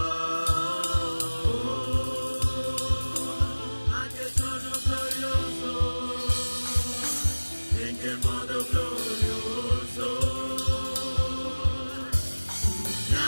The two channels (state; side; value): inverted; both; correlation -1.00